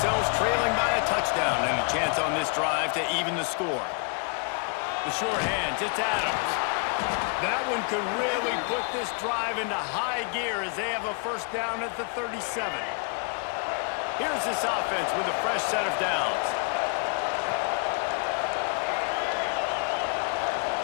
trailing by a touchdown and a chance on this drive to even the score. The short hands, it's Adams. That one could really put this drive into high gear as they have a first down at the 37. Here's this offense with a fresh set of downs.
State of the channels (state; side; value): quieter; right; 37.3 dB